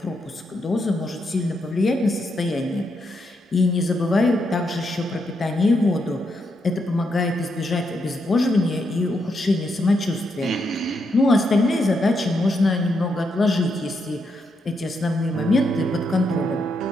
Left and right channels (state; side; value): normal; both; correlation 0.80